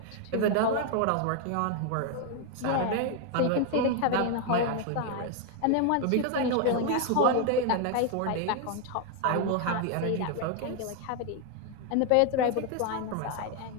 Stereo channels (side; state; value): both; different; correlation 0.00